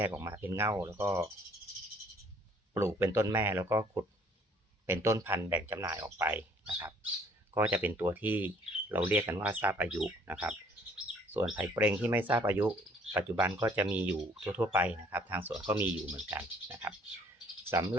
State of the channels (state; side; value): normal; both; correlation 0.59